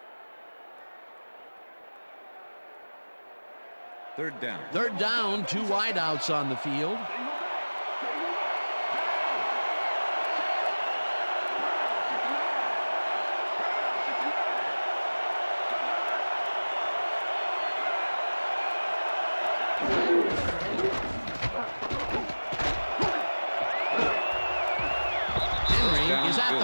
Third down. Third down, 2 wideouts on the field. Henry is at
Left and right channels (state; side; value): inverted; both; correlation -1.00